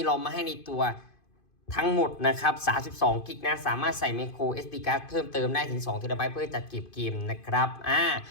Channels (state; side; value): late; right; 2.5 ms